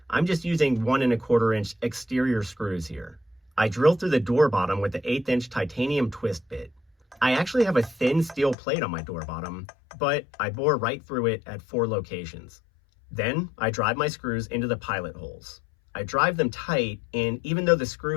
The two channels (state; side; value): drops out; right; at 8.6 s